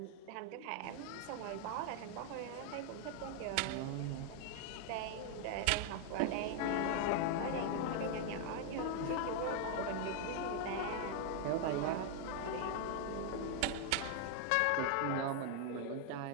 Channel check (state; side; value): different; both; correlation 0.00